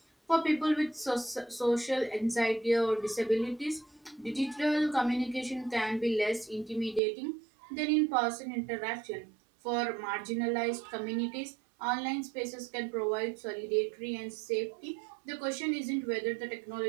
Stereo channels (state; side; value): drops out; left; at 7.0 s